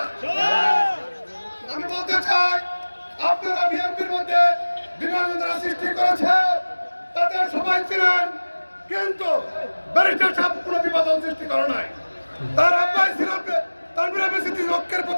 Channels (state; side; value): inverted; both; correlation -1.00